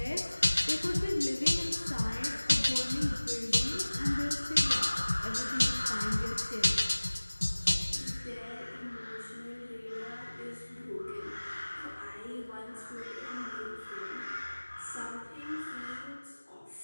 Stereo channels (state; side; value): inverted; both; correlation -1.00